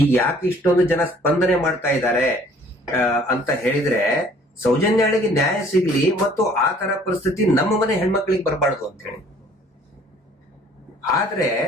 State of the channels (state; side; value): normal; both; correlation 0.56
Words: ಈಗ ಯಾಕೆ ಇಷ್ಟೊಂದು ಜನ ಸ್ಪಂದನೆ ಮಾಡ್ತಾ ಇದ್ದಾರೆ ಅಂತ ಹೇಳಿದ್ರೆ, ಸೌಜನ್ಯಳಿಗೆ ನ್ಯಾಯ ಸಿಗ್ಲಿ ಮತ್ತು ಆ ತರ ಪರಿಸ್ಥಿತಿ ನಮ್ಮ ಮನೆ ಹೆಣ್ಮಕ್ಳಿಗೆ ಬರಬಾರ್ದು ಅಂತ ಹೇಳಿ. ಆದ್ರೆ